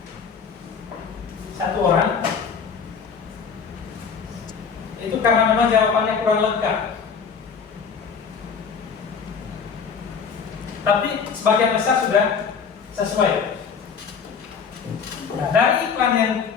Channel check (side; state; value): right; quieter; 6.2 dB